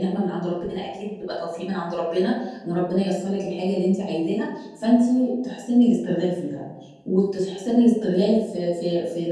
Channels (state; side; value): identical; both; correlation 1.00